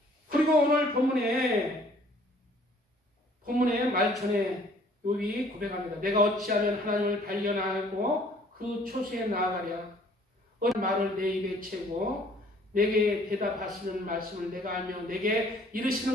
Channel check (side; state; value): both; normal; correlation 0.57